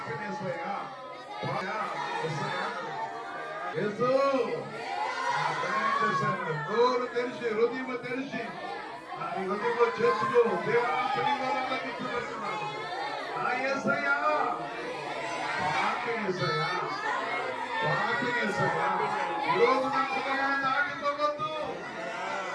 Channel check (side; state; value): both; identical; correlation 1.00